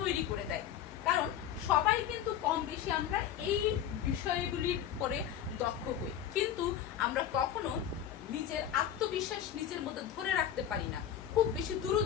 করে দেয়। কারণ সবাই কিন্তু কম বেশি আমরা এই বিষয়গুলির পরে দক্ষ হই, কিন্তু আমরা কখনো নিজের আত্মবিশ্বাস নিজের মধ্যে ধরে রাখতে পারি না, খুব বেশি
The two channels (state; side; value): quieter; right; 10.0 dB